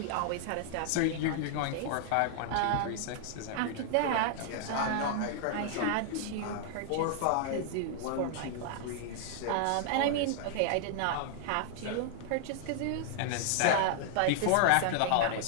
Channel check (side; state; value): both; different; correlation -0.01